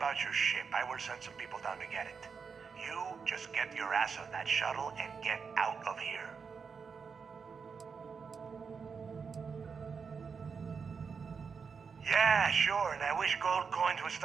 your ship. I will send some people down to get it. You just get your ass on that shuttle and get out of here. Yeah, sure, and I wish gold coins would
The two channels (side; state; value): left; quieter; 5.7 dB